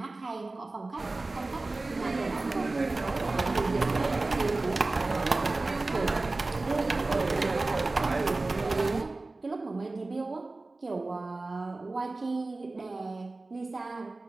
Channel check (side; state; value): left; quieter; 3.2 dB